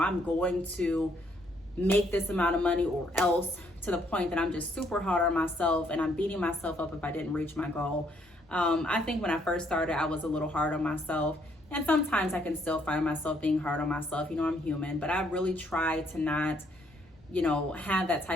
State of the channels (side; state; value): both; normal; correlation 0.69